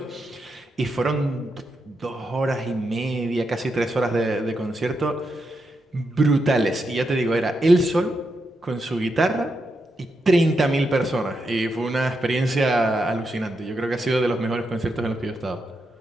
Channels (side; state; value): both; normal; correlation 0.84